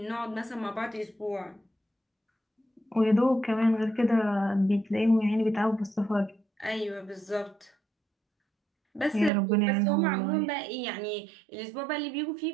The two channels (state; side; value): drops out; left; at 9.3 s